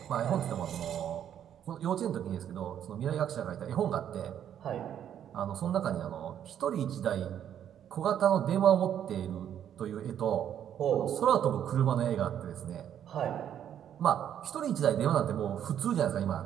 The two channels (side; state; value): left; quieter; 9.8 dB